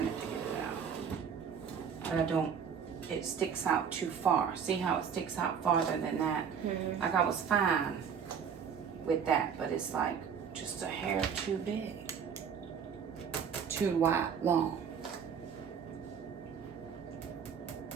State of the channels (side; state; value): left; quieter; 7.1 dB